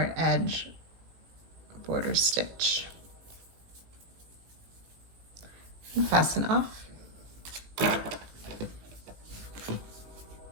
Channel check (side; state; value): left; late; 18 ms